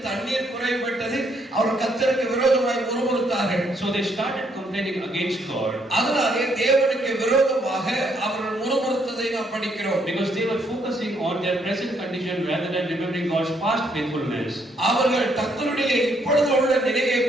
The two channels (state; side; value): normal; both; correlation 0.71